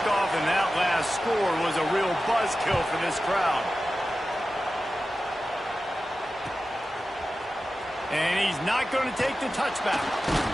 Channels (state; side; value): normal; both; correlation 0.94